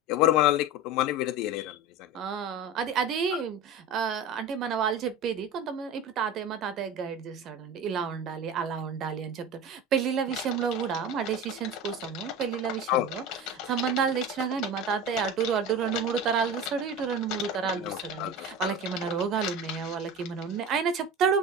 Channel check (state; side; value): normal; both; correlation 0.30